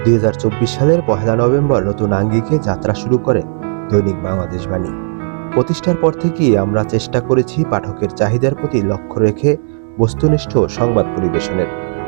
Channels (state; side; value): silent; left; digital silence